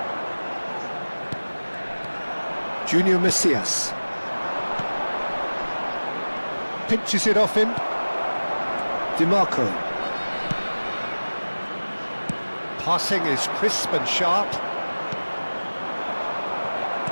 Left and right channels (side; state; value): both; inverted; correlation -1.00